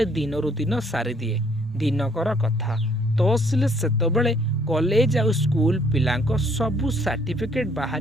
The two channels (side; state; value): both; normal; correlation 0.64